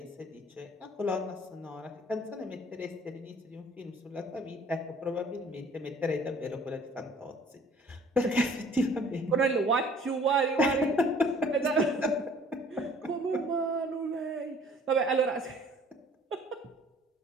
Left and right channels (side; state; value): both; normal; correlation 0.54